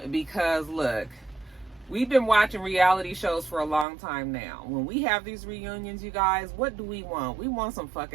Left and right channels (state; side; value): drops out; left; at 3.9 s